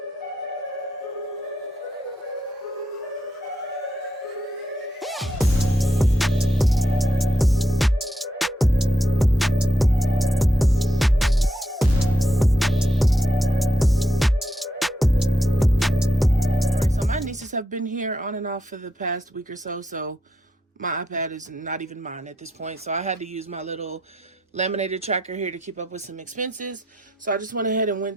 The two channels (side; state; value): both; normal; correlation 0.82